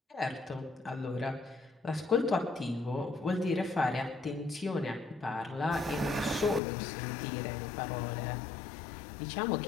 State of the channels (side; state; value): right; drops out; at 6.6 s